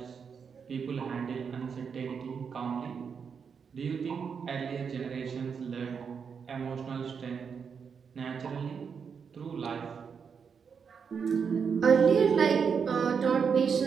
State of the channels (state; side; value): quieter; left; 6.3 dB